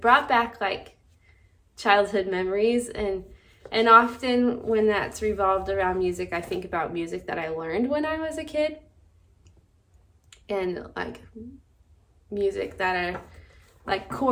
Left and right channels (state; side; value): identical; both; correlation 1.00